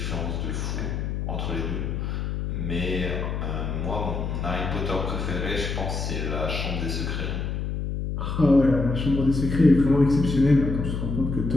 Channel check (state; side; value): noise; left; hum, 3 dB below the sound